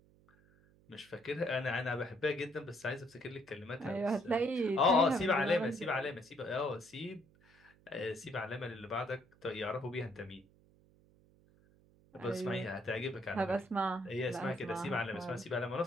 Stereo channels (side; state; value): right; noise; hum, 29 dB below the sound